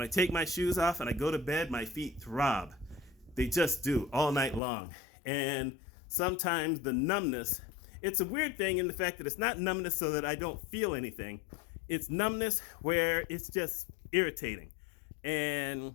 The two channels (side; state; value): right; drops out; at 4.6 s